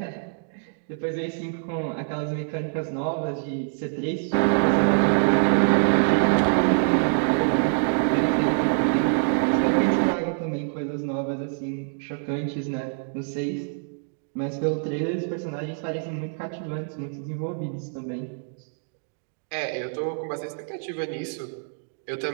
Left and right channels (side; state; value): left; silent; digital silence